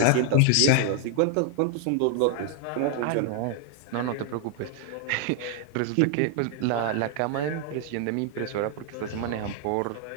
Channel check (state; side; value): different; both; correlation 0.00